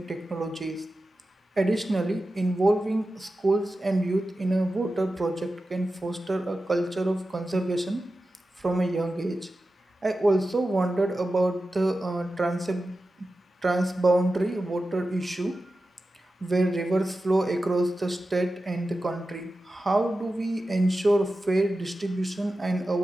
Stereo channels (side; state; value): both; normal; correlation 0.93